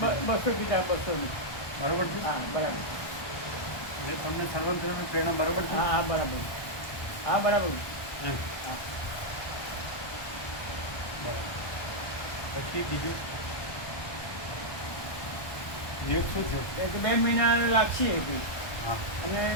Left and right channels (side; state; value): right; late; 1.2 ms